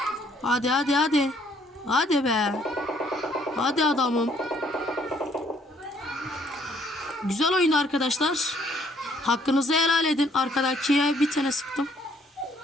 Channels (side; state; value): both; normal; correlation 0.65